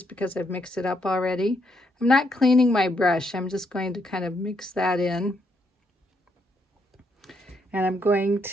because I've mixed it up already. I'm not cleaning my brush. I'm just going to kind of mix that in. And I'm going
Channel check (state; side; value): normal; both; correlation 0.76